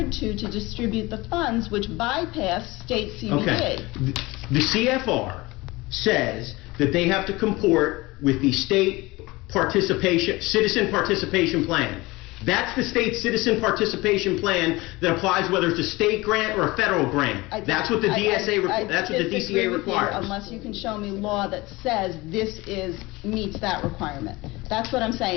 to distribute the funds, which bypass state CBD. Okay. The CFR says that they have to comport with the state citizen participation plan. That's the state citizen participation plan that applies whether it's a state grant or a federal grant. That's what the DCA requires. Unless you can show me law that says this meets that requirement. That's what I'm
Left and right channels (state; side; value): quieter; right; 21.7 dB